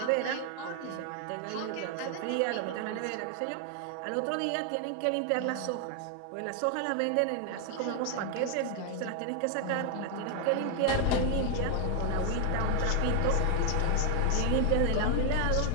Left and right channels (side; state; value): both; different; correlation 0.00